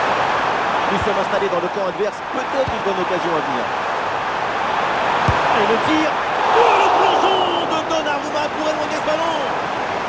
Nous sommes installés dans le camp adverse. Peut-être une bonne occasion à venir. Et le tir. Oh, le plongeon de Donnarumma pour éloigner ce ballon.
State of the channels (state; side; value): identical; both; correlation 1.00